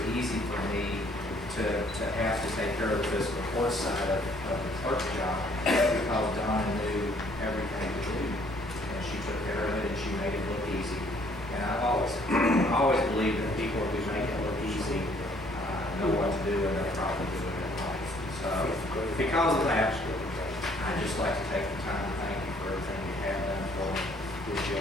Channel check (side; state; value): both; normal; correlation 0.62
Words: easy for me to have to take care of the fiscal court side of the clerk job because Donna knew everything to do, and she took care of it and she made it look easy. And I've always believed that people who make it look easy know what to do and they're probably doing it right. So because of that, I'd just like to take the time to thank you for everything you have done for me. Wish